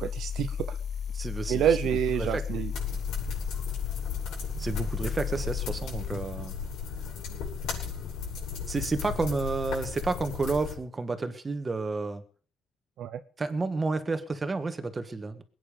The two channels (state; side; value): normal; both; correlation 0.71